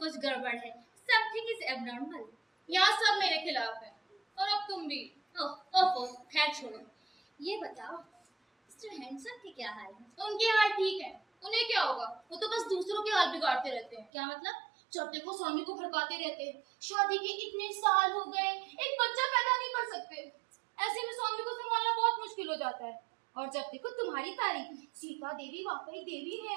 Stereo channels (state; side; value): drops out; left; at 14.1 s